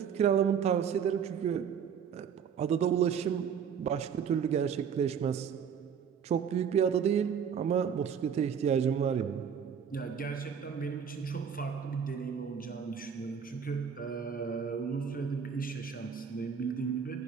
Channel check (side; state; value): left; quieter; 7.4 dB